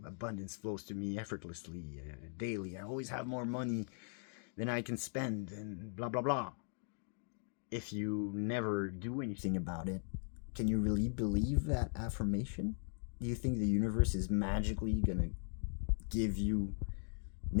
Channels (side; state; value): right; silent; 52 dB below the other